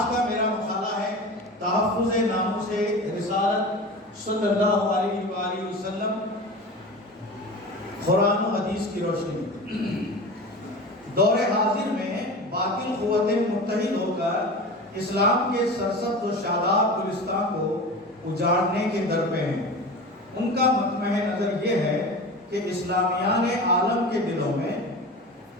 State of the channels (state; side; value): normal; both; correlation 0.32